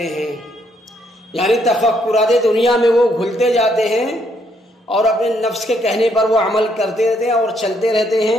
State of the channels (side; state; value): both; normal; correlation 0.72